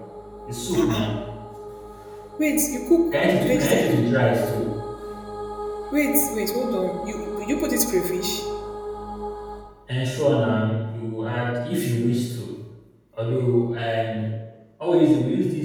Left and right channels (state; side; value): identical; both; correlation 1.00